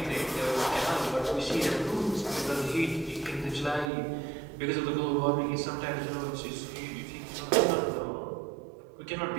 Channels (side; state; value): left; drops out; at 3.9 s